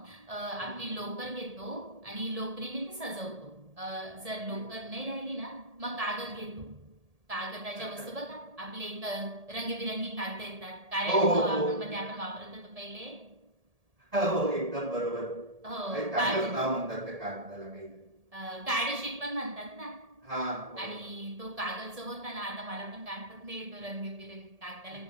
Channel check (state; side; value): late; left; 1.7 ms